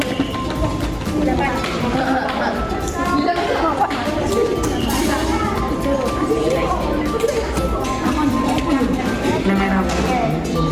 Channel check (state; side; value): identical; both; correlation 1.00